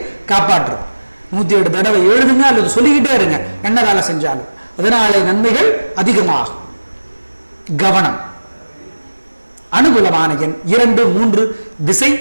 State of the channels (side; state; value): both; inverted; correlation -1.00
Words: காப்பாற்றும். 107 தடவை எழுதுங்க அல்லது சொல்லிக்கிட்டே இருங்க என்ன வேலை செஞ்சாலும். அதனாலே நன்மைகள் அதிகமாகும். கவனம். அனுகூலமான எண் 2, 3. திசை